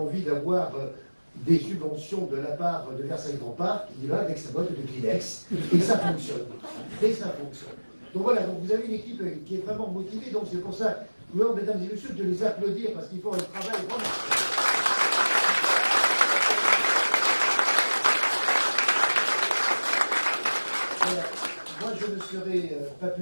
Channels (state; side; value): inverted; both; correlation -1.00